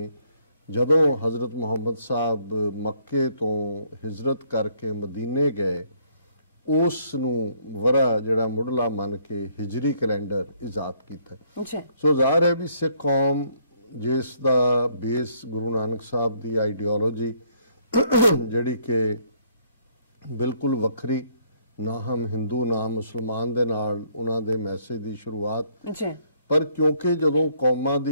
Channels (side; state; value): both; inverted; correlation -0.66